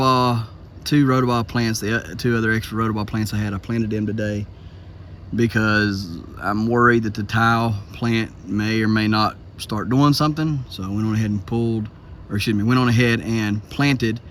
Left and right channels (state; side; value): identical; both; correlation 1.00